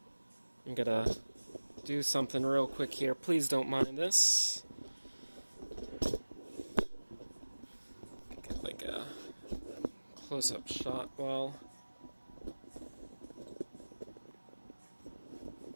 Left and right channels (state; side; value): inverted; both; correlation -1.00